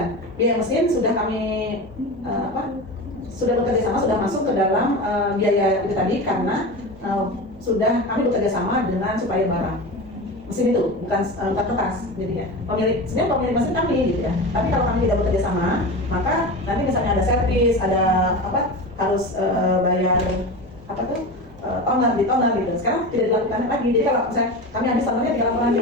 biaya mesin sudah kami sudah bekerja sama, sudah masuk ke dalam biaya itu tadi karena sudah kami bekerja sama dengan supplier barang mesin itu, bukan kertas. Jadi ya sebenarnya pemilik mesin kami gitu ya. Tapi kalau kami tidak bekerja sama, maka nanti misalnya ada servis, ada harus bayar toner di toner gitu. Sekarang tidak dilakukan lagi. Jadi kalau misalnya kami habis tonernya 3 laporan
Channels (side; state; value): both; normal; correlation 0.27